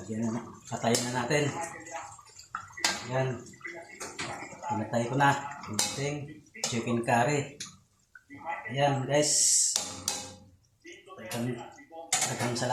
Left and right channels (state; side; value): identical; both; correlation 1.00